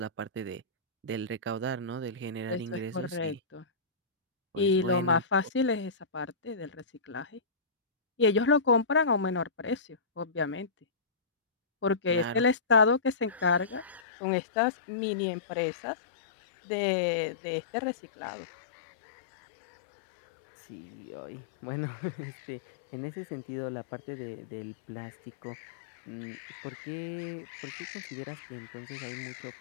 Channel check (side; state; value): right; drops out; at 14.0 s